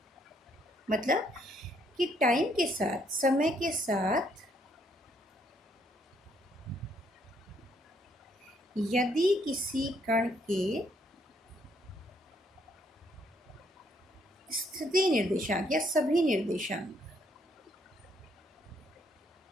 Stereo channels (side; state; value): both; normal; correlation 0.70